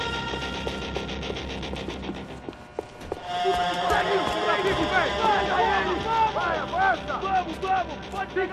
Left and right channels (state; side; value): identical; both; correlation 1.00